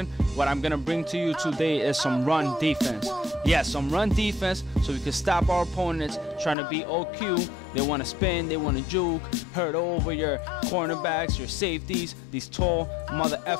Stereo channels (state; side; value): drops out; right; at 6.6 s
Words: What I'm gonna bring to you today is some run defense. Yes, some run defense so we can stop our opponents trying to beat OQ. They want to spin, they want to juke, hurt over your cornerbacks, your safeties, these tall mother